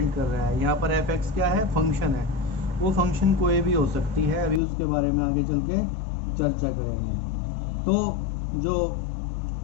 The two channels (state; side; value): drops out; right; at 4.6 s